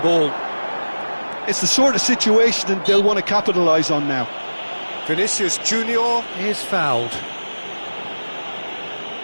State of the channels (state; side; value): inverted; both; correlation -1.00